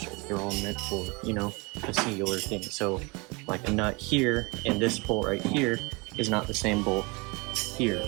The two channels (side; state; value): left; quieter; 27.3 dB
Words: They're all meant for, you know, a singular thing. So like a nut here and this bolt right here is not the same bolt here.